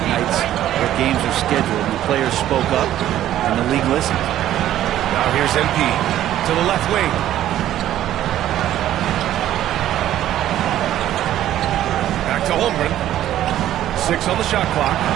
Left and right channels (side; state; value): left; quieter; 12.5 dB